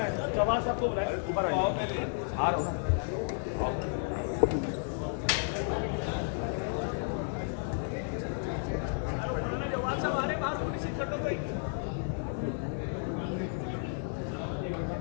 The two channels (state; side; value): silent; right; 56 dB below the other